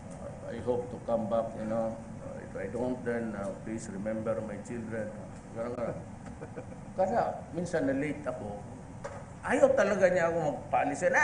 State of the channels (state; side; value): identical; both; correlation 1.00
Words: I hope to come back, you know. If I don't, then please remember my children. Kaya minsan na-late ako. Ayaw talaga niya ako magpaalisin.